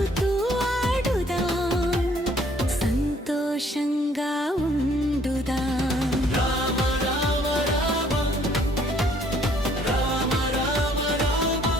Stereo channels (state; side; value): normal; both; correlation 0.62